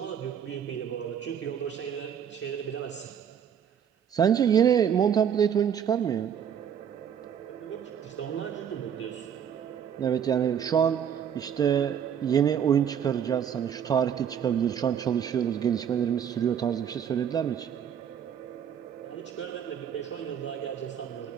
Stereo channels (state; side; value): quieter; left; 8.4 dB